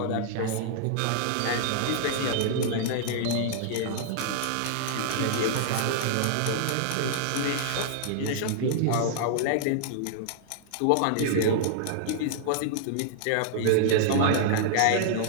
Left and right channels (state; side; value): different; both; correlation -0.01